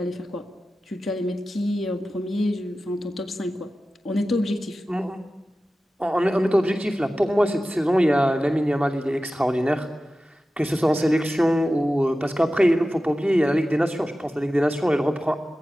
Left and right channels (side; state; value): both; normal; correlation 0.94